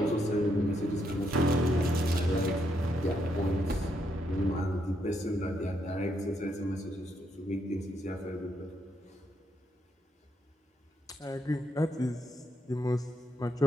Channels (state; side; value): normal; both; correlation 0.77